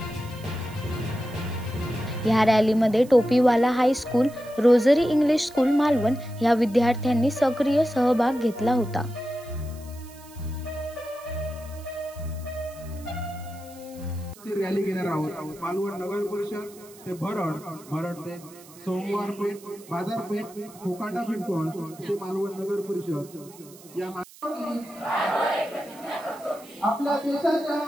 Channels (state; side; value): noise; right; hiss, 22 dB below the sound